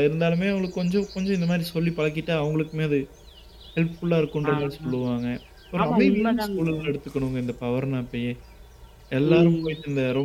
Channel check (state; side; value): identical; both; correlation 1.00